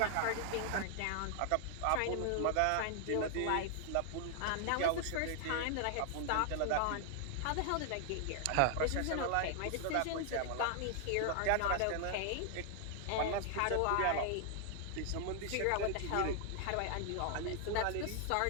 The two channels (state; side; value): different; both; correlation 0.00